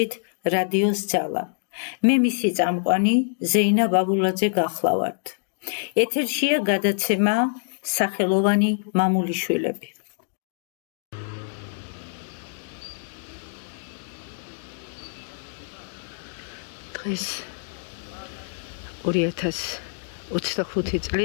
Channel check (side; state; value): right; silent; digital silence